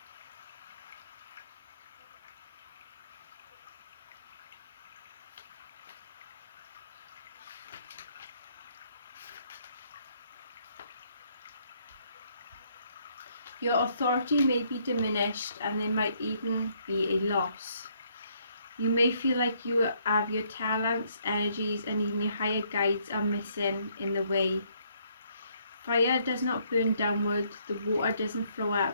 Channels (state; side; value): inverted; both; correlation -0.69